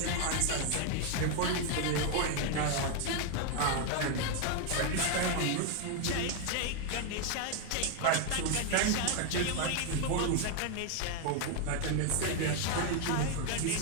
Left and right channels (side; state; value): both; different; correlation 0.01